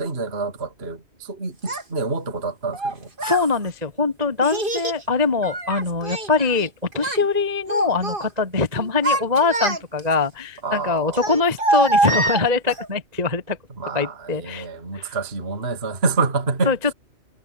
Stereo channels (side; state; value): left; late; 2.5 ms